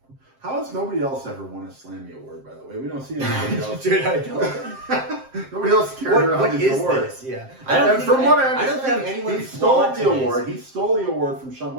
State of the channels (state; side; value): late; left; 7.6 ms